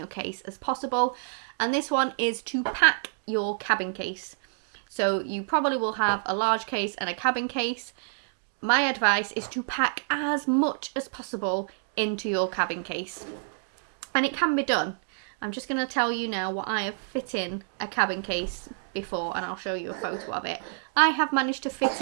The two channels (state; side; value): silent; left; digital silence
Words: case as possible. And this one is to pack your cabin case. So you probably will have a large case and a cabin case. My advice is to pack as much as possible into your cabin case. And it can be done. I'm just going to tell you now what I have fit in a cabin case before, and I'll show you a photo of it. I have managed to fit